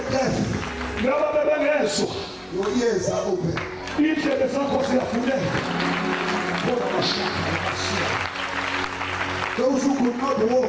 deaf, your ears are open. Those who could not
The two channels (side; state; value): both; identical; correlation 1.00